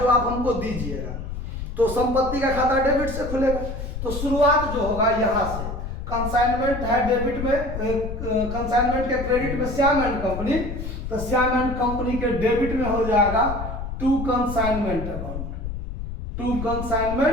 आप हमको दीजिएगा। तो संपत्ति का खाता डेबिट से खुलेगा। तो शुरुआत जो होगा यहाँ से, कंसाइनमेंट है डेबिट में, कंसाइनमेंट के क्रेडिट में श्याम एंड कंपनी, तो श्याम एंड कंपनी के डेबिट में हो जाएगा to consignment account, to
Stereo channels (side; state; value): left; noise; rumble, 6 dB below the sound